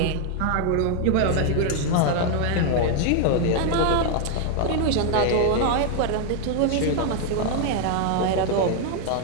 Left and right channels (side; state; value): both; different; correlation 0.00